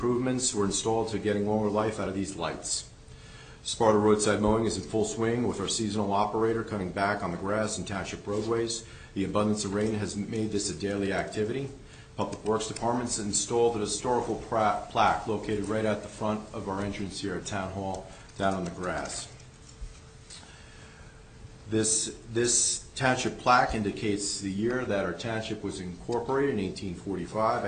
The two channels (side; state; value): both; identical; correlation 1.00